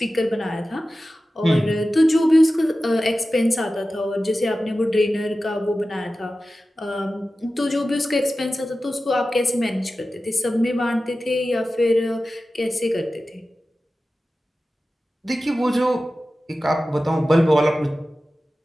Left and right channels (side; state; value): both; normal; correlation 0.95